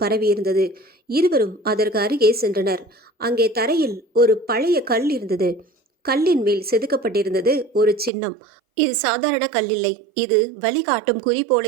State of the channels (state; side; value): drops out; left; at 8.1 s